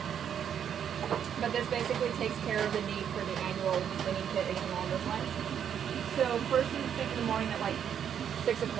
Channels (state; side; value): quieter; left; 8.7 dB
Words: But this basically takes care of the need for the annual cleaning kit, anything along those lines. So first thing in the morning at like 6